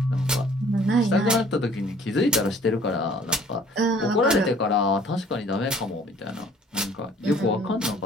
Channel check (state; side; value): normal; both; correlation 0.55